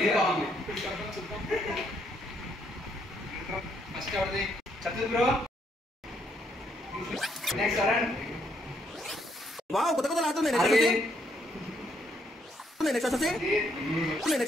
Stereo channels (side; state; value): both; normal; correlation 0.73